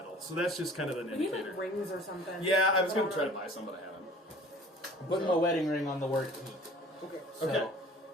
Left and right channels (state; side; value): normal; both; correlation 0.47